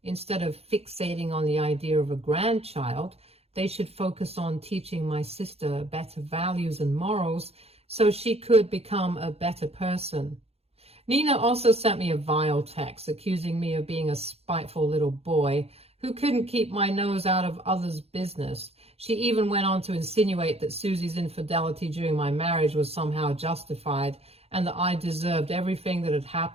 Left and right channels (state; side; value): late; left; 0.29 ms